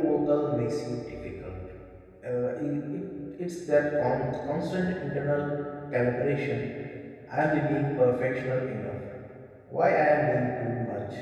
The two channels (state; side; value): identical; both; correlation 1.00